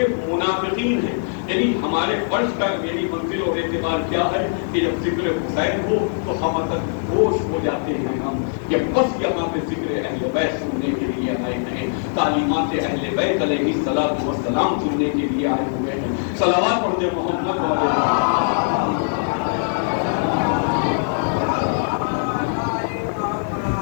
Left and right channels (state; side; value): silent; right; 57 dB below the other